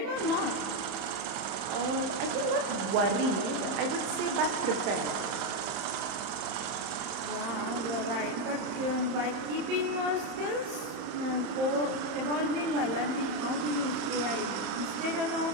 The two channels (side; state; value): left; late; 31 ms